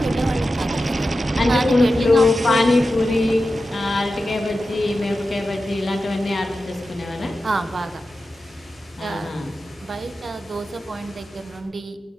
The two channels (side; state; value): both; normal; correlation 0.92